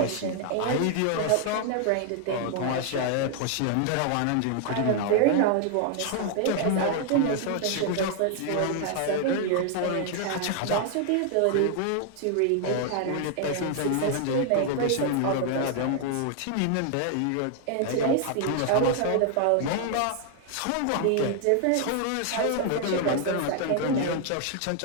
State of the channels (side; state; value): both; different; correlation 0.00